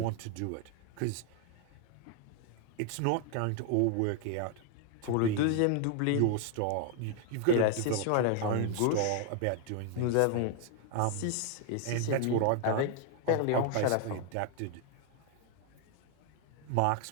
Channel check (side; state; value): both; different; correlation 0.00